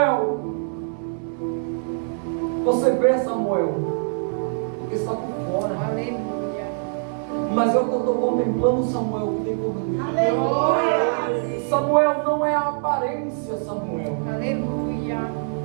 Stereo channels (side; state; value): left; silent; digital silence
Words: você vê, Samuel, porque está por fora. Aleluia. Mas eu estou contemplando Samuel que tem por dentro. Aleluia. Samuel não é a aparência, Samuel. Aleluia.